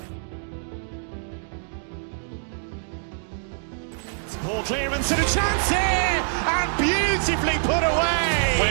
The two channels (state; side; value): silent; left; digital silence